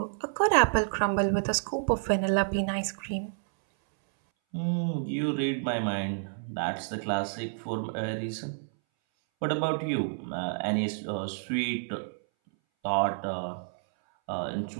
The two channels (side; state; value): left; silent; 58 dB below the other